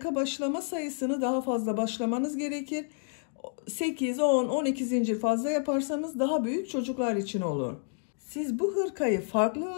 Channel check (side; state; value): right; silent; digital silence